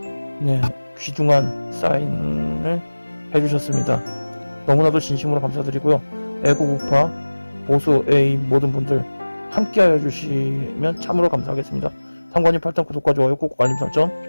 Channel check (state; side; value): inverted; both; correlation -1.00